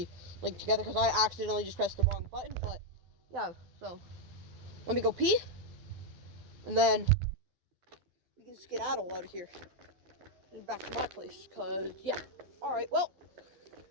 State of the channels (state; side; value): late; left; 12 ms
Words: linked together, because I accidentally just pressed the wrong button, but yeah, so let me go pee, and then we can skedaddle out of here and back to my place, because, yeah. Alright, well,